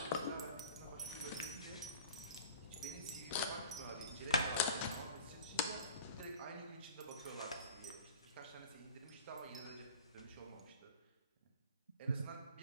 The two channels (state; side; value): inverted; both; correlation -0.43